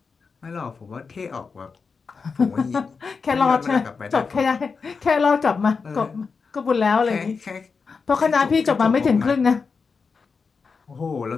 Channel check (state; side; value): quieter; right; 5.1 dB